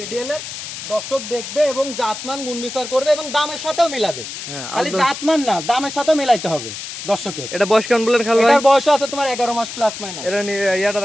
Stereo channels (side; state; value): left; noise; hiss, 9 dB below the sound